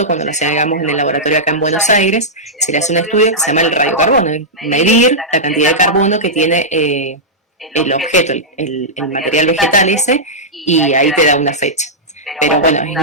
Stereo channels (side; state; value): both; normal; correlation -0.12